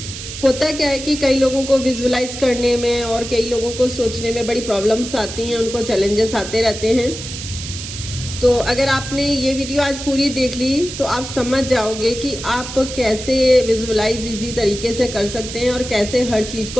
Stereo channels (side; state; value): right; noise; hiss, 9 dB below the sound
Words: होता क्या है कि कई लोगों को विजुलाइज करने में और कई लोगों को सोचने में बड़ी प्रॉब्लम्स आती हैं, उनको चैलेंजेस आते रहते हैं। तो अगर आपने ये वीडियो आज पूरी देख ली तो आप समझ जाओगे कि आप कैसे विजुअलाइज इजी तरीके से कर सकते हैं और कैसे हर चीज़